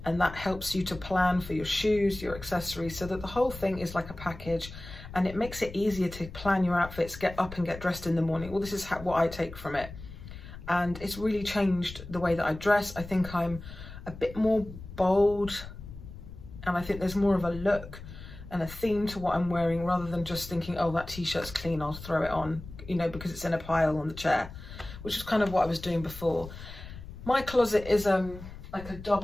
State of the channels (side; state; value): left; noise; rumble, 13 dB below the sound